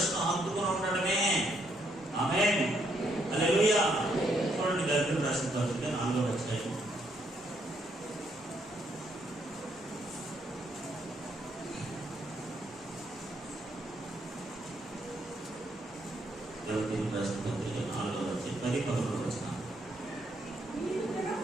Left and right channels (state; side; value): normal; both; correlation 0.73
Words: హత్తుకుని ఉండడమే. ఆమేన్. హల్లెలూయా. చూడండి, గద్యం రాసిన పత్రిక 4వ అధ్యాయం.